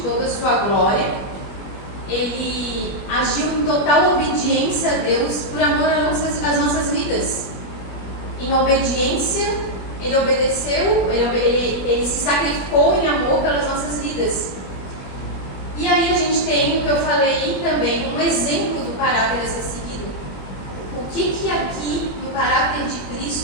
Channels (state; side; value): late; right; 21 ms